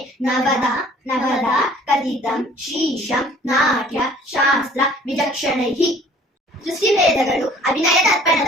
ನವದ ಕಥಿತಂ ಶೀಶಂ ನಾಟ್ಯ ಶಾಸ್ತ್ರ ವಿಚಕ್ಷಣೈಃ ಸೃಷ್ಟಿವೇದಗಳು ಅಭಿನಯ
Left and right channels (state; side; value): normal; both; correlation 0.53